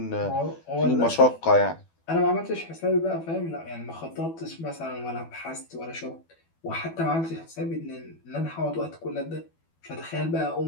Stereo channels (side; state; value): right; late; 12 ms